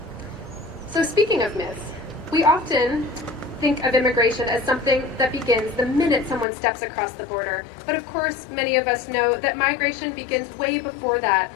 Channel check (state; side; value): drops out; right; at 6.5 s